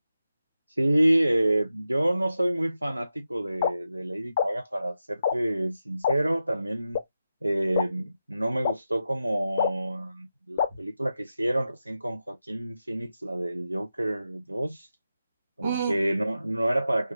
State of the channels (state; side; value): inverted; both; correlation -0.90